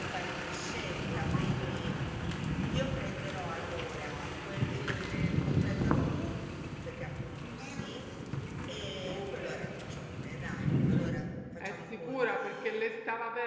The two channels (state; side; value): identical; both; correlation 1.00